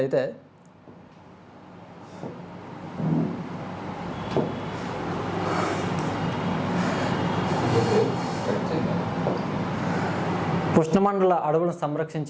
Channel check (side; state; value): both; identical; correlation 1.00